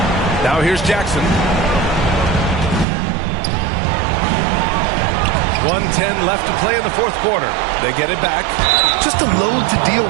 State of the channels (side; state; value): left; drops out; at 2.9 s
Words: Now here's Jackson. 1:10 left to play in the 4th quarter. They get it back. Just a load to deal